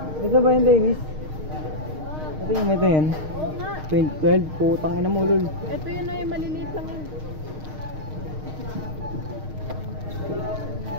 Ito ba yan, Davis? Ito yung ito yan. Oo nga. 2012, putang ina mo, lul. Ito yun ay maliliit lang yun.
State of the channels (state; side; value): late; left; 6.5 ms